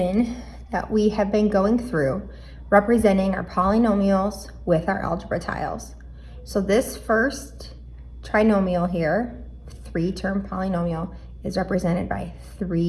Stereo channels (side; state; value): both; identical; correlation 1.00